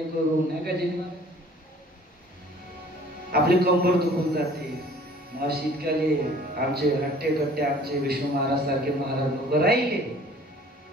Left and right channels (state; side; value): normal; both; correlation 0.51